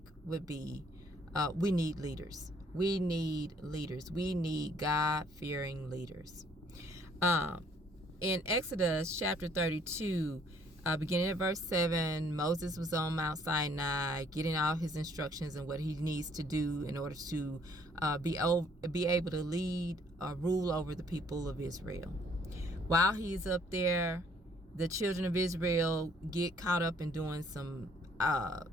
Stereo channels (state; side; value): normal; both; correlation 0.62